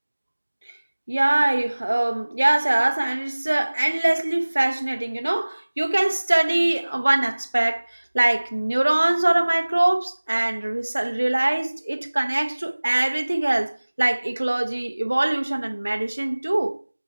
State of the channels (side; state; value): both; inverted; correlation -1.00